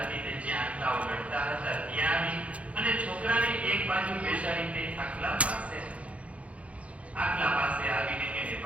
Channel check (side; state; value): left; late; 0.064 ms